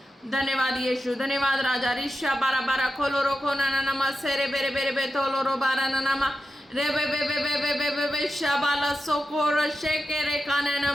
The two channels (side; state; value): both; normal; correlation 0.90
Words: धन्यवाद यीशु, धन्यवाद राजा। रिशा बारा बारा खोलो रोको ना ना नमा सेरे बेरे बेरे बे तोलो रो बारा ना नमा रे बे बे बे बे बे बे बे बे शाबाला सोको रो शेके रे काने